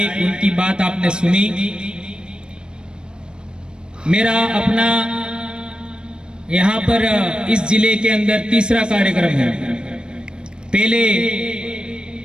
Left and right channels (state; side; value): late; left; 0.052 ms